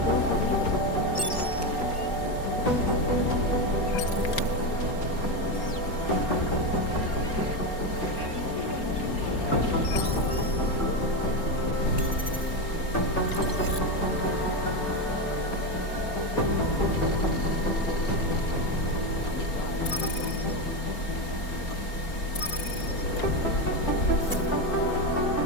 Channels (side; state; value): right; late; 4.3 ms